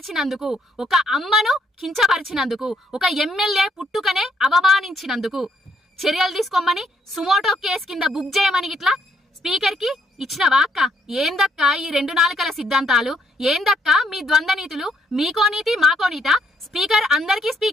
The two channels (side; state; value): both; normal; correlation 0.72